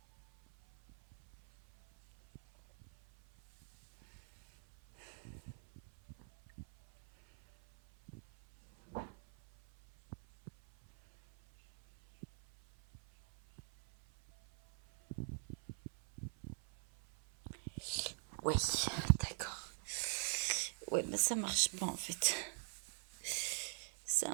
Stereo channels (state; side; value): silent; left; 50 dB below the other